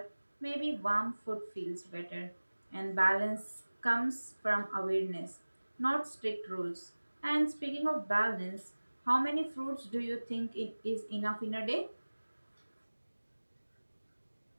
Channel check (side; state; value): both; inverted; correlation -1.00